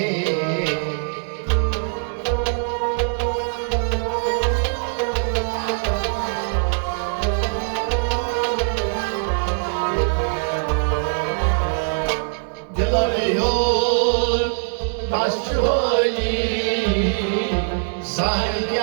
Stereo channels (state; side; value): silent; left; digital silence